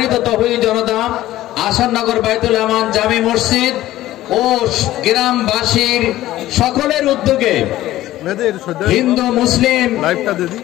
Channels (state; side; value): quieter; right; 15.0 dB